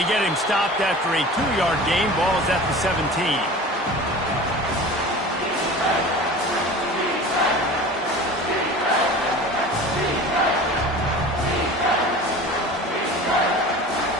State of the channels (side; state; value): both; normal; correlation 0.38